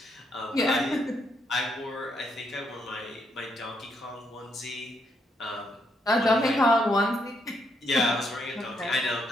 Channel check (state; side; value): normal; both; correlation 0.75